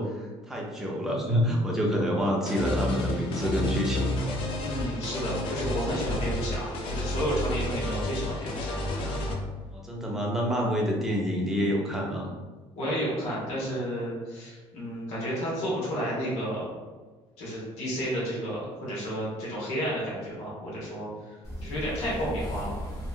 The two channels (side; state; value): both; normal; correlation 0.59